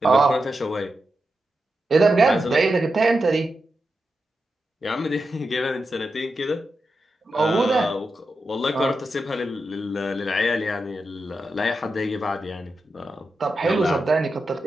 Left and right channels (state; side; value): normal; both; correlation 0.89